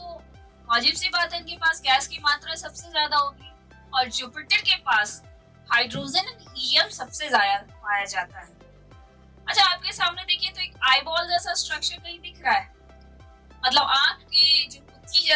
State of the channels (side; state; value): both; identical; correlation 1.00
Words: वाजिब सी बात है इनके पास गैस की मात्रा सबसे ज्यादा होगी, और जुपिटर के पास हाइड्रोजन एंड हीलियम सबसे ज्यादा पाया जाता है। अच्छा, आपके सामने देखिए तो एक आईबॉल जैसा स्ट्रक्चर कहीं दिख रहा है, मतलब आंख के जो कुत्ती